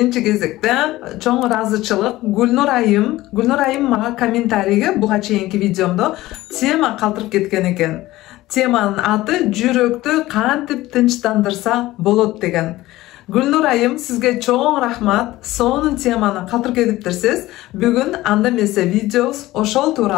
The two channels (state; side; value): quieter; right; 17.2 dB